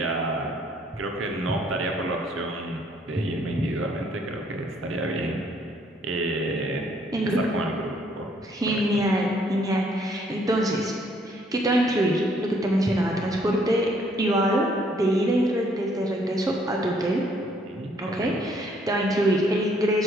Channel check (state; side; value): normal; both; correlation 0.66